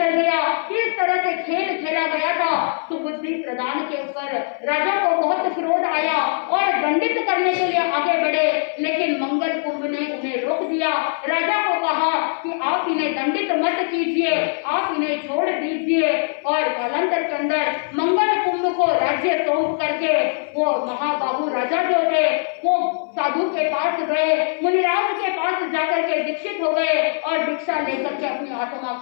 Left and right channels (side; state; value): right; silent; 59 dB below the other